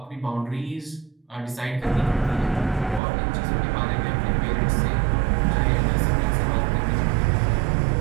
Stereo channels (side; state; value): left; drops out; at 3.0 s